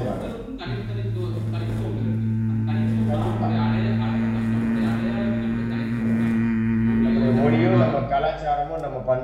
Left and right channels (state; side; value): identical; both; correlation 1.00